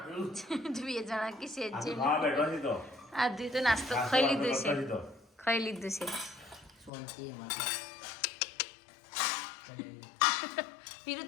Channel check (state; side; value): drops out; right; at 6.9 s